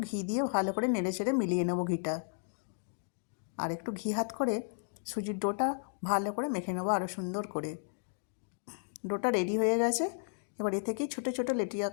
ঘি দিয়ে ভালো করে নেড়ে চেড়ে মিলিয়ে নেব ঘিটা, আর একটু ঘি হাত করে সুজির ডোটা ভালো করে মেখে নেবো আরও সুন্দর করে। ডোটা রেডি হয়ে গেছে। এবার এ থেকেই ছোটো ছোটো লেটি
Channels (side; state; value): right; silent; digital silence